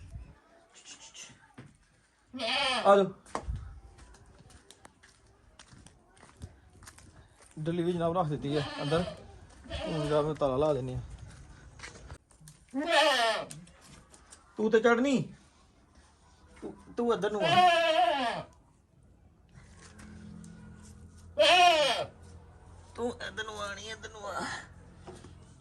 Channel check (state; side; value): identical; both; correlation 1.00